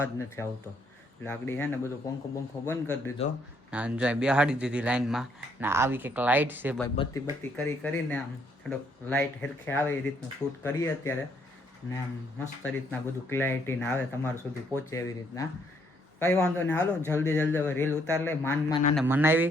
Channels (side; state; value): both; normal; correlation 0.70